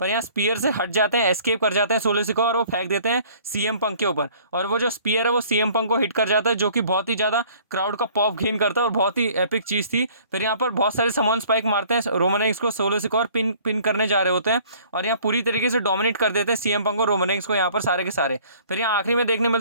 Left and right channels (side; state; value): both; inverted; correlation -0.54